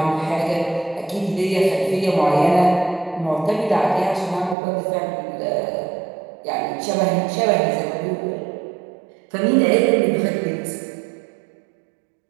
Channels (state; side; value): drops out; left; at 4.5 s